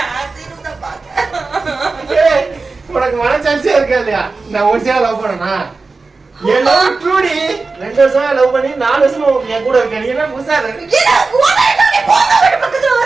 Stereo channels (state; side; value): quieter; left; 4.0 dB